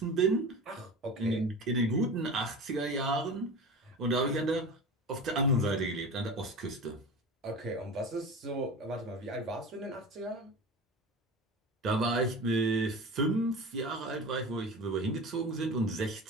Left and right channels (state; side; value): normal; both; correlation 0.32